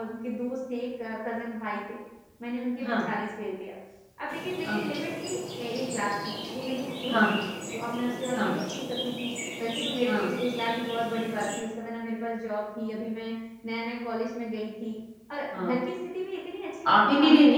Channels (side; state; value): both; identical; correlation 1.00